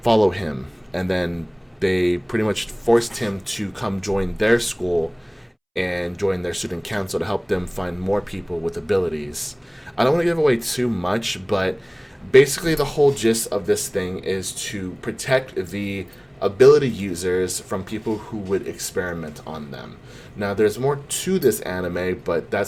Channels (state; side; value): identical; both; correlation 1.00